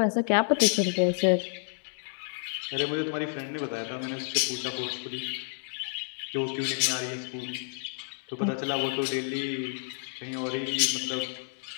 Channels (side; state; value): right; silent; digital silence